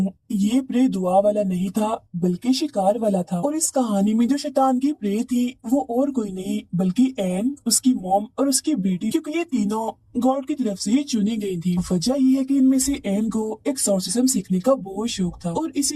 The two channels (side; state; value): both; identical; correlation 1.00